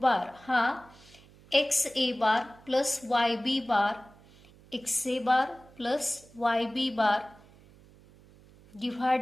बार हा X A bar plus Y B bar, X A bar plus Y B bar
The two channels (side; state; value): right; noise; hum, 25 dB below the sound